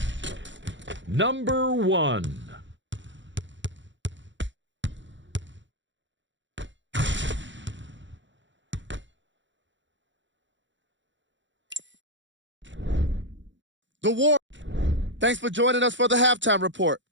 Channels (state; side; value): late; left; 0.54 ms